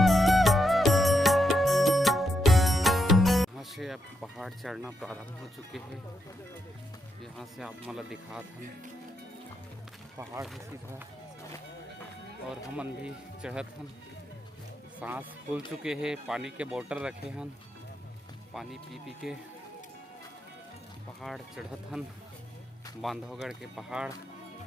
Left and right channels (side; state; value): both; normal; correlation 0.82